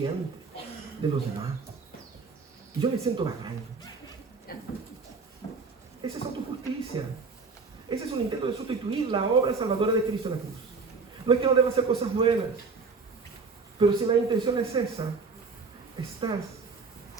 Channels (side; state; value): left; quieter; 4.5 dB